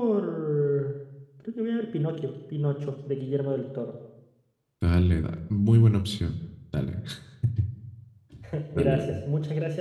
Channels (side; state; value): both; identical; correlation 1.00